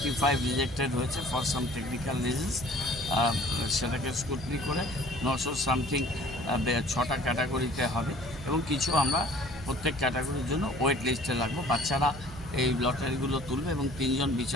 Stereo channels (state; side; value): noise; right; hum, 15 dB below the sound